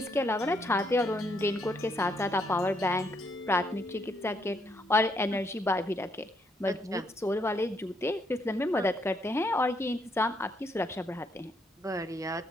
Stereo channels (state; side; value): normal; both; correlation 0.74